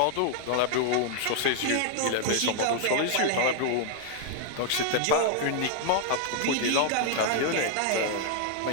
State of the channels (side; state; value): both; different; correlation 0.00